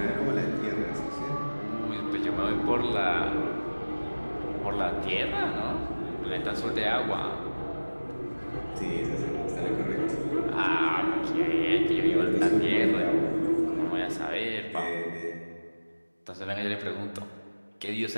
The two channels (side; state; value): both; inverted; correlation -1.00